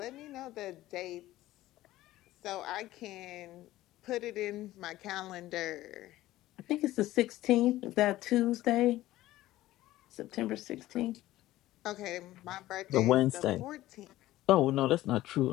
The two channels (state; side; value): quieter; right; 15.7 dB